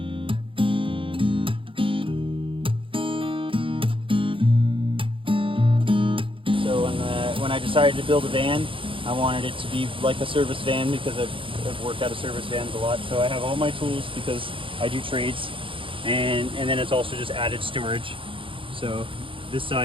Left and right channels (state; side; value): late; left; 0.25 ms